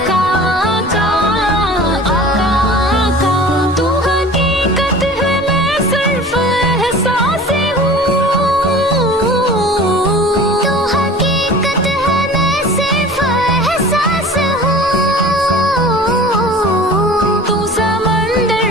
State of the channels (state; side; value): normal; both; correlation 0.42